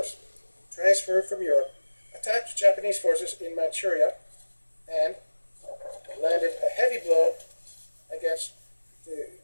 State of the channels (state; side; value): inverted; both; correlation -1.00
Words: transferred from Europe, attacked Japanese forces in Manchuria and landed a heavy blow against the